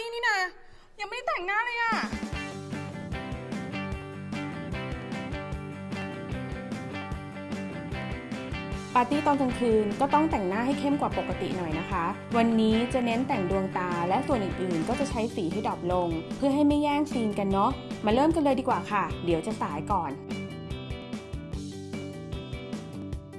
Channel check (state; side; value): identical; both; correlation 1.00